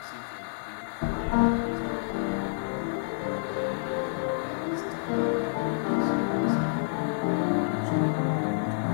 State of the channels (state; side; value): silent; right; digital silence